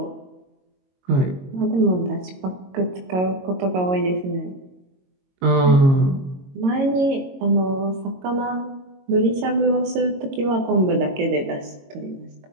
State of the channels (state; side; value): late; left; 22 ms